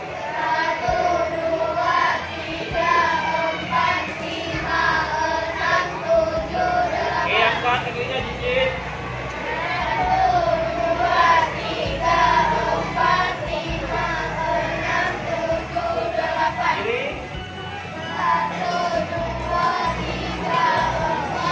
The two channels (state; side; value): identical; both; correlation 1.00